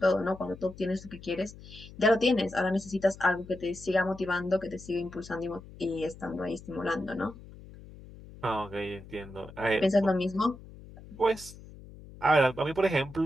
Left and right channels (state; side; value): noise; left; hum, 18 dB below the sound